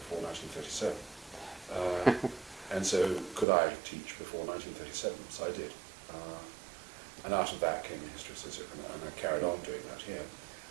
1937. And so could I teach before 1937? So I did. And out of that came the history of sociology, and I carried on doing that here.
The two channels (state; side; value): drops out; left; at 3.5 s